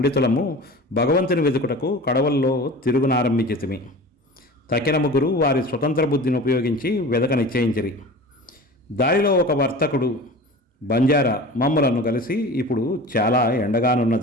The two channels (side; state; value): both; normal; correlation 0.36